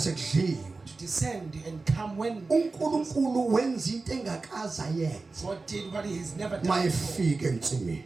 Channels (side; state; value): left; quieter; 3.8 dB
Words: to descend and come when uNkulunkulu wenza into engakaza yenza God did what he has never done before. mayefika ensimini.